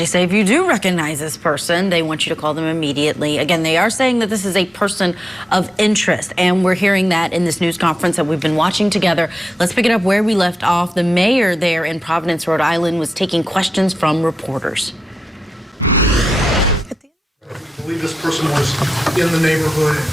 say if you do recognize this person, they want you to call them immediately. Again, they are saying that this is a person of interest, and we're hearing that in this news conference that we've been watching together. Let's pick it up where we left off. The mayor there in Providence, Rhode Island, was taking questions from reporters. I believe this person was in the neighborhood at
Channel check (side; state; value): both; normal; correlation 0.90